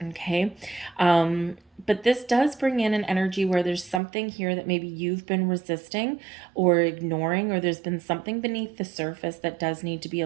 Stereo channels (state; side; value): drops out; left; at 4.0 s